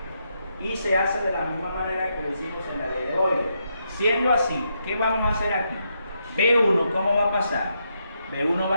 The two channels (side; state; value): both; inverted; correlation -0.80